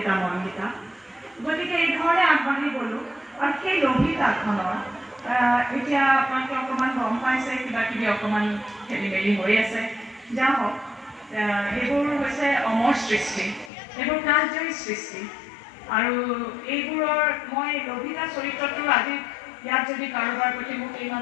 মন্দিতা। গতিকে এই ধৰণে আগবাঢ়ি গ'লোঁ। আৰু সেই লভিতাখনৰ এতিয়া আপোনালোকে অকণমান গম পাইছে, কিবা কিবি অকণমান খেলি মেলি হৈ আছে, যা হওক। এইবোৰ হৈছে অমৰ সৃষ্টি, এইবোৰ কালজয়ী সৃষ্টি। আৰু এইবোৰৰ মই লভিতা চৰিত্ৰটো আজি ইয়াত যদি কাৰোবাৰ প্ৰতি মোক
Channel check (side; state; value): right; drops out; at 13.7 s